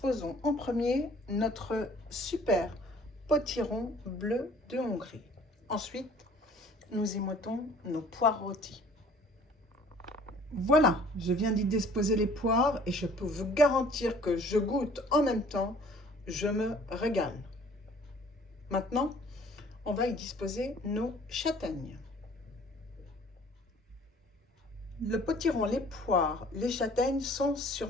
en premier notre super potiron bleu de Hongrie. Ensuite, nous y mettons nos poires rôties. Voilà, je viens d'y disposer les poires et je peux vous garantir que je goûte en même temps, je me régale. Maintenant, on va y disposer nos châtaignes. Le potiron, les poires, les châtaignes sont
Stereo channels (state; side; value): normal; both; correlation 0.53